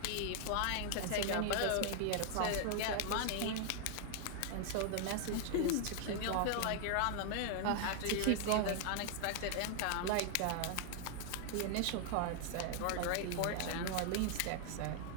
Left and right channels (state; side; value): different; both; correlation 0.00